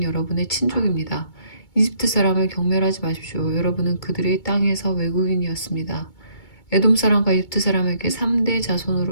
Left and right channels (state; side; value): late; right; 2.2 ms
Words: 여러분의 친족입니다. 이집트 사람을 경멸하지 마십시오. 여러분은 그들의 땅에서 외국인이었습니다. 에돔 사람과 이집트 사람에게 3대